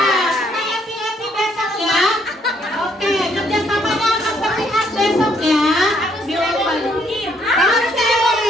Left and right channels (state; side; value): normal; both; correlation 0.68